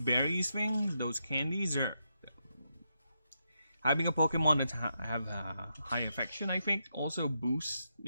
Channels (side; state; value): both; inverted; correlation -0.83